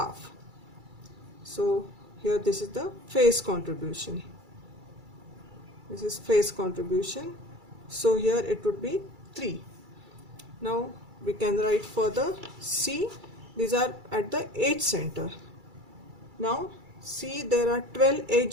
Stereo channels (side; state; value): left; late; 2.3 ms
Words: So here this is the face contribution. This is face contribution. So here it would be 3. Now we can write further C. These are at the edge center. Now C, there are 12